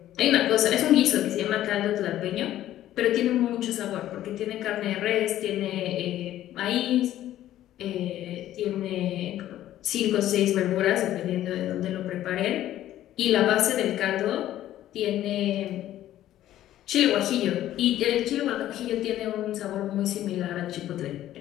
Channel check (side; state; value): right; quieter; 13.1 dB